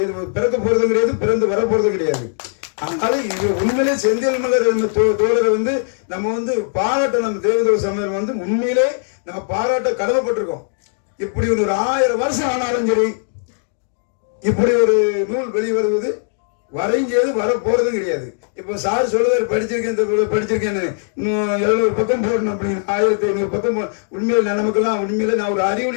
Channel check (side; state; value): right; silent; digital silence